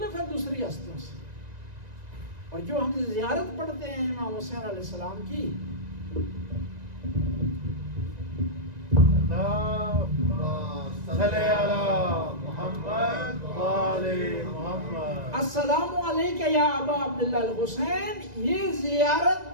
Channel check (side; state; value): left; late; 1.9 ms